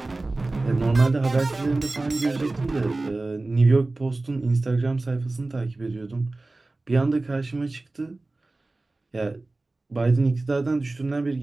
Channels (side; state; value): left; quieter; 3.1 dB